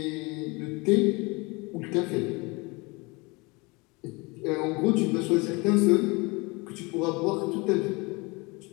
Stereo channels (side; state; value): right; quieter; 26.6 dB